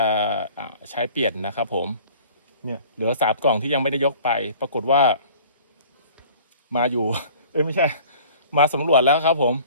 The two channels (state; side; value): inverted; both; correlation -0.48